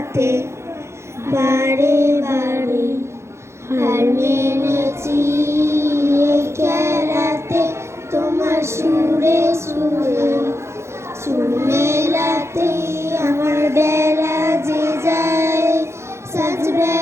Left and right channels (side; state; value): left; late; 0.13 ms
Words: বারে বারে হার মেনেছি এই খেলাতে, তোমার সুরে সুরে সুর মেলাতে, আমার বেলা যে যায় সাজ